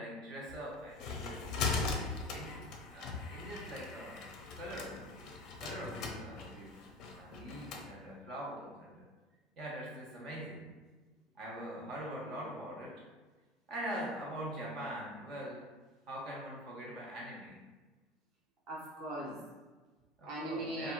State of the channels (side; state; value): both; normal; correlation 0.33